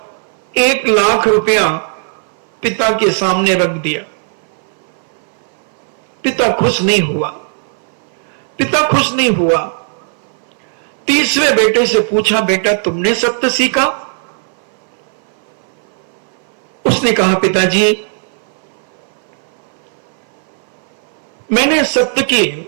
1 लाख रुपया पिता के सामने रख दिया। पिता खुश नहीं हुआ, पिता खुश नहीं हुआ। तीसरे बेटे से पूछा, बेटा तुमने सत्य सीखा? उसने कहा, पिताजी मैंने सत्य के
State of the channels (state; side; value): silent; left; 58 dB below the other